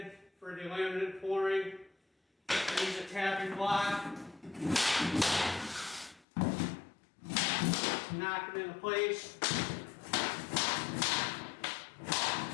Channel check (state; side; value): drops out; right; at 6.2 s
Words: for the laminate flooring. I use a tapping block to knock it into place.